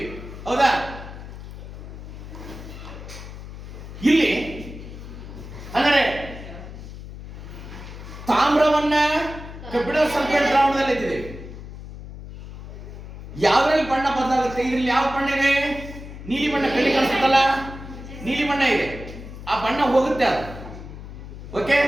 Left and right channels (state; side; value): noise; left; hum, 12 dB below the sound